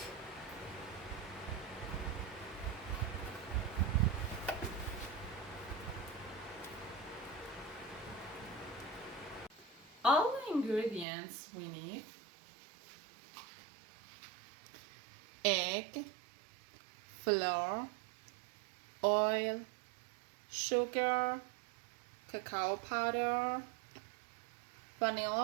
All the ingredients we need: egg, flour, oil, sugar, cacao powder,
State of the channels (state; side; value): drops out; left; at 11.1 s